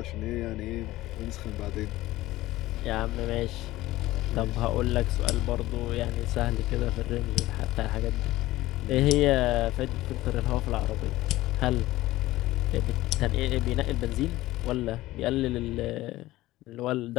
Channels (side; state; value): right; quieter; 17.0 dB